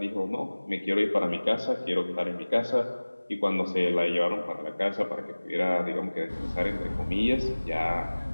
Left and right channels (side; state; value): both; inverted; correlation -1.00